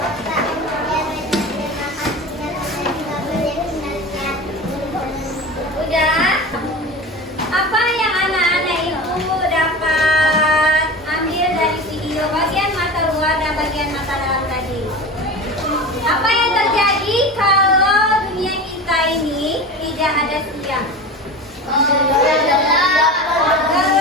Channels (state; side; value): normal; both; correlation 0.30